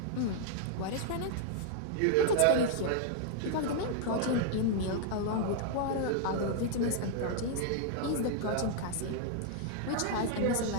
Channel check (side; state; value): both; different; correlation -0.01